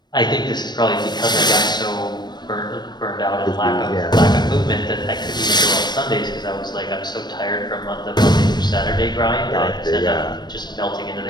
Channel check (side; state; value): right; late; 0.21 ms